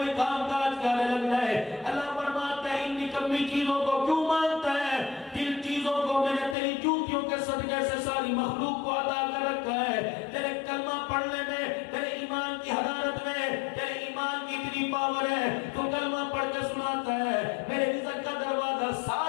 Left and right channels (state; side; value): drops out; right; at 6.6 s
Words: کام کاج کرنے لگ جائے. اللہ فرماتا ہے ان نکمی چیزوں کو کیوں مانتا ہے؟ جن چیزوں کو میں نے تیری جوتیوں کے صدقے سے ساری مخلوق کو عطا کر رکھا ہے. تیرے کلمہ پڑھنے میں، تیرے ایمان کی حرارت میں، تیرے ایمان کی اتنی پاور ہے، تو کلمہ پڑھ کے سناتا ہے میرے رزق کا دروازہ